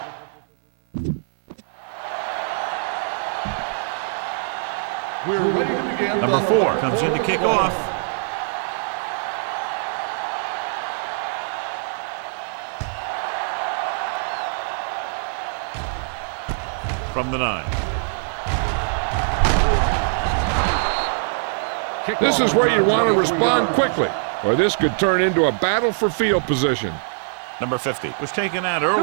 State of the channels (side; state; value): left; silent; digital silence